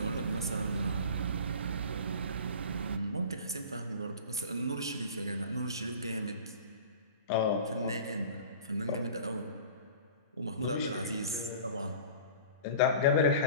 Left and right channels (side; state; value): both; inverted; correlation -0.40